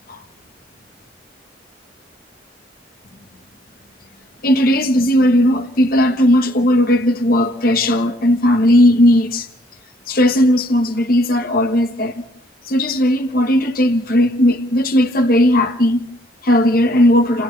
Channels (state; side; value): normal; both; correlation 0.65